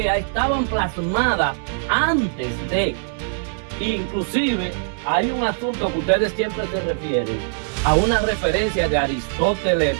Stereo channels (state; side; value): silent; left; digital silence